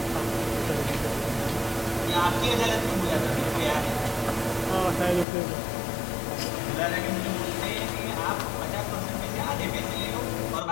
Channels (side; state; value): right; drops out; at 5.2 s